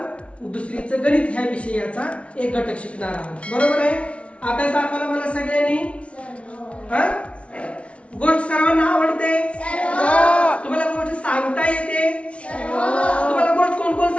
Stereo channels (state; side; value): late; right; 0.062 ms